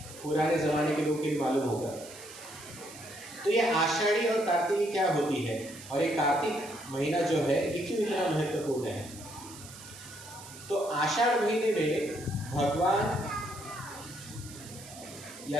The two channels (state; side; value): noise; right; hiss, 16 dB below the sound